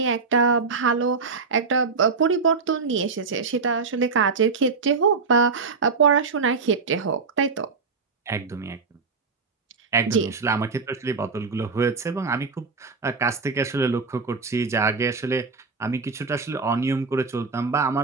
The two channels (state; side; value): quieter; left; 4.7 dB